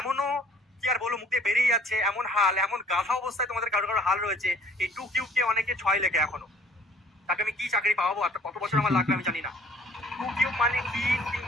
কি আর বলো, মুখে বেরিয়ে যাচ্ছে এমন হাল, এমন গাধা অবস্থায় তোমাদের কারো কারো হাল রয়েছে, এই 2 কিউব কে অনেকে 6 লেখে এখনো। তাকে আমি কি চাকরি পাবো আর কত বছর আমার লাগবে আমি জানি না। 2 কিউব মানে কি?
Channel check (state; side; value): normal; both; correlation 0.55